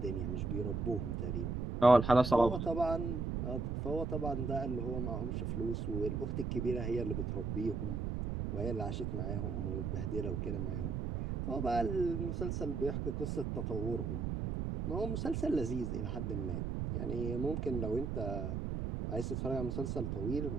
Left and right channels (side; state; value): right; noise; rumble, 2 dB below the sound